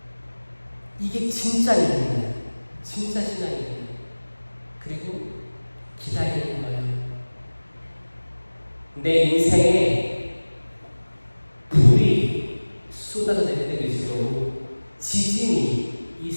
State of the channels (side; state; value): both; inverted; correlation -1.00